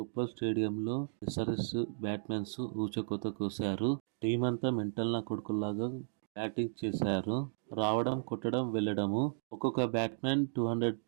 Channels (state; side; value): silent; left; digital silence